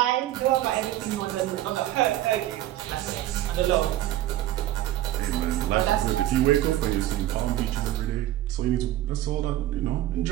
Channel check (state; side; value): quieter; left; 14.0 dB